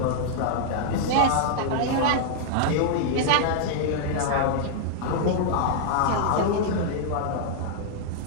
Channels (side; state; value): both; different; correlation -0.01